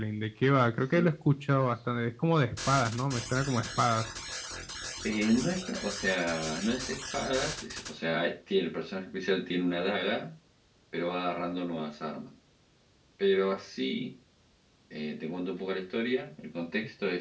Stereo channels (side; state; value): both; identical; correlation 1.00